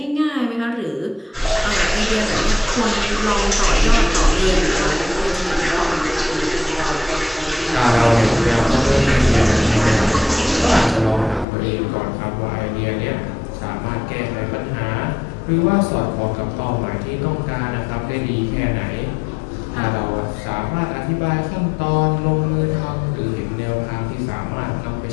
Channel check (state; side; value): drops out; right; at 11.5 s